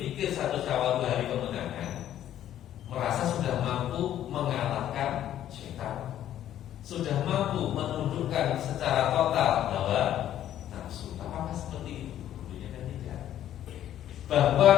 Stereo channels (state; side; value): quieter; right; 11.6 dB